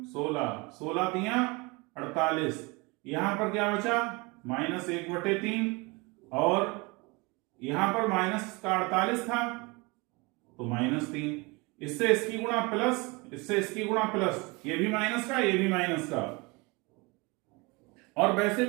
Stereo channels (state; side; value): quieter; left; 26.6 dB